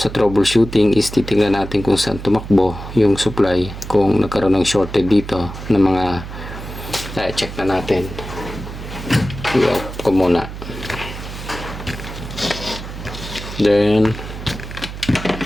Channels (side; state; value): right; noise; hum, 10 dB below the sound